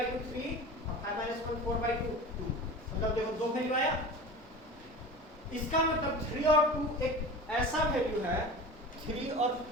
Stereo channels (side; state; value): both; normal; correlation 0.34